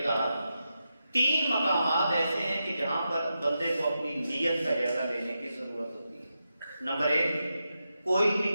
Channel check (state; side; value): inverted; both; correlation -0.88